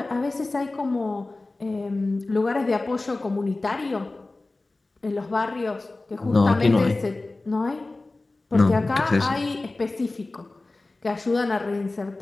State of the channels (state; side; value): quieter; right; 3.1 dB